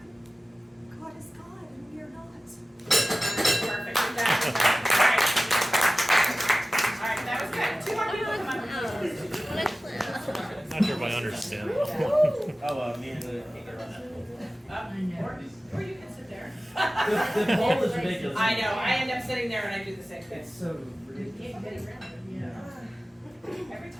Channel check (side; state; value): both; normal; correlation 0.96